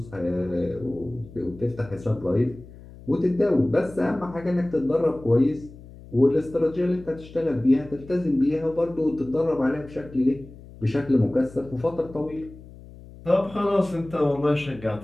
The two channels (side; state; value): left; noise; hum, 19 dB below the sound